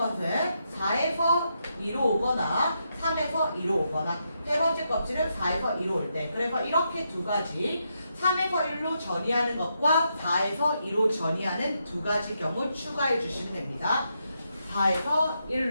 4에서 2로 오거나 3에서 2로 오거나 세 번째 껍질은 4에서 2로 올 때. 그래서 이렇게 두 가지 3에서 1로 전이하는 것과 4에서 2로 전이하는 두 가지 경우 추가해 주시면 됩니다. 3에서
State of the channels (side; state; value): both; inverted; correlation -0.82